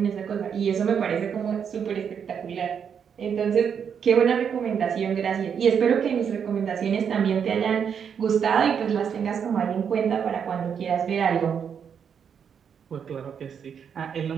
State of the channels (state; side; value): quieter; left; 7.4 dB